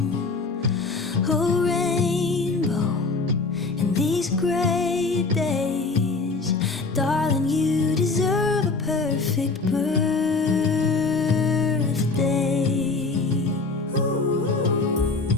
Oh, rainbow, in these gray days, darling, you deserve a perfect birthday.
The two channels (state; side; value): quieter; right; 3.9 dB